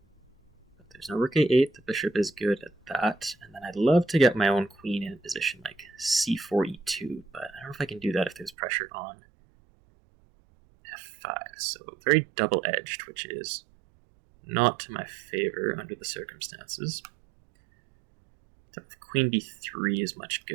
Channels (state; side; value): drops out; left; at 8.5 s